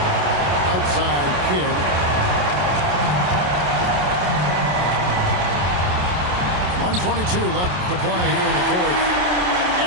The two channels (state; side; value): late; left; 28 ms